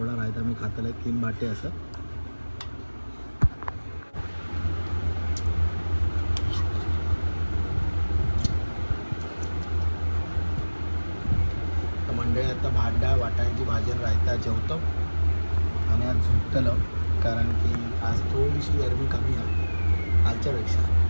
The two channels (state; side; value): inverted; both; correlation -1.00